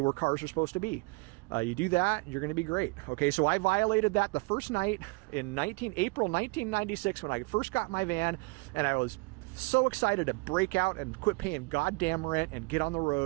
where cars are supposed to be. You do that, you're going to be great. Okay, so I violated that the first night in April 1996 when I first got my van, and I was so excited to break out and quit paying goddamn rent and get on the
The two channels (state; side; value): quieter; left; 27.8 dB